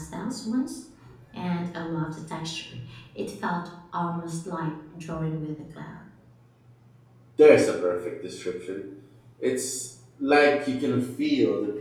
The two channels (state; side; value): identical; both; correlation 1.00